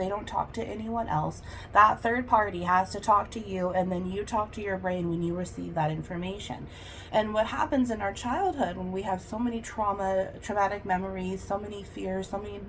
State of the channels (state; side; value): identical; both; correlation 1.00